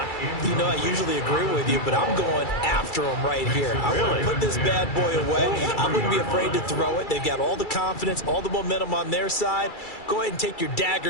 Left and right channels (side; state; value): right; late; 2.3 ms